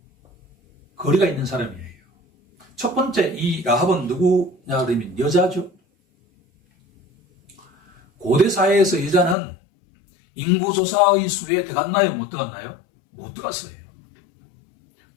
거리가 있는 사람이에요. 첫 번째, 이 라합은 누구냐 그러면 여자죠. 고대 사회에서 여자는 인구조사의 수에 들어갔나요? 못 들어갔나요? 못 들어갔어요.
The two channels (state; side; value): drops out; right; at 9.3 s